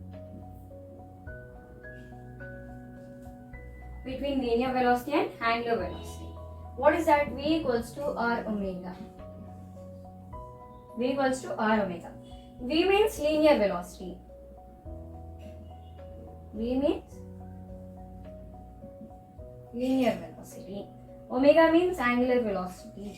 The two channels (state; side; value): identical; both; correlation 1.00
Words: between linear velocity and angular velocity. What is that? V equals to R omega. V equals to R omega. V means linear velocity. V means linear velocity. Omega means angular